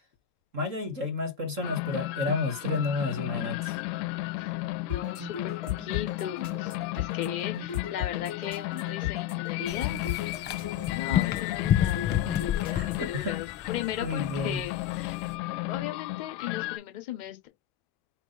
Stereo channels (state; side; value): quieter; right; 9.0 dB